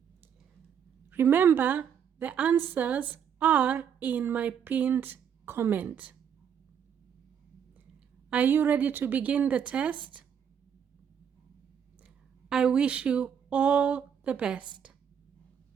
Remember, the answers are in my pinned comment. Are you ready to begin the test? I wish you all the best.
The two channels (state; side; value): quieter; left; 8.0 dB